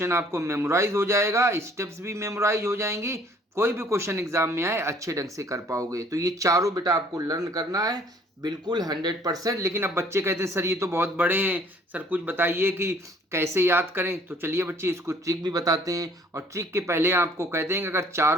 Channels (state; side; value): normal; both; correlation 0.58